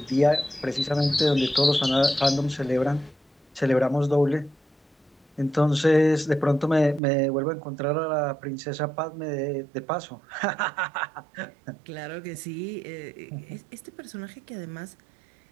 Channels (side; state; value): left; drops out; at 7.0 s